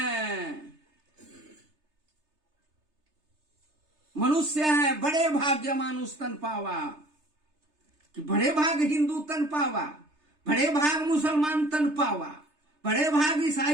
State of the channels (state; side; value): late; left; 3.3 ms